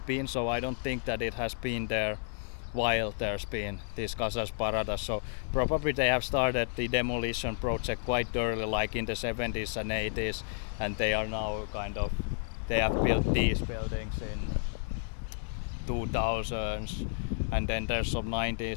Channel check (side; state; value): right; silent; digital silence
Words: been, so I don't think that it has been there while there's been this Casas Baratas. So probably they have started the demolition project quite early, like in the 70s and 80s, and they are now they have built these buildings in 2000s, and then there's some